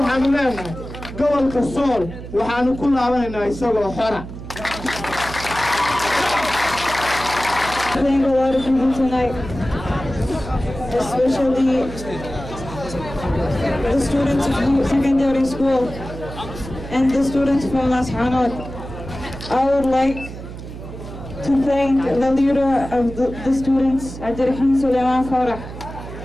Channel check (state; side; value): noise; right; hum, 11 dB below the sound